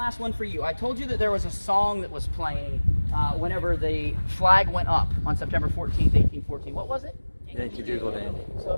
one for you. I told you that there was a song that was playing whenever the flag went up on September 14th, 1814. What was it? Yankee Doodle Dandy. So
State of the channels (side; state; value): both; inverted; correlation -1.00